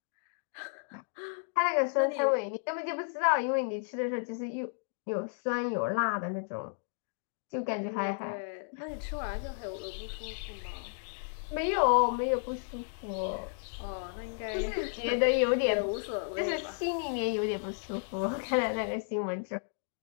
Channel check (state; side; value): silent; right; digital silence